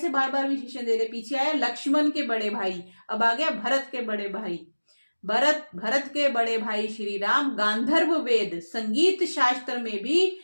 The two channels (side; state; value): both; inverted; correlation -1.00